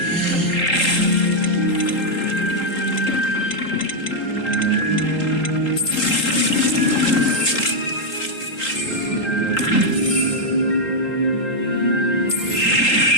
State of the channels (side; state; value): right; late; 3.8 ms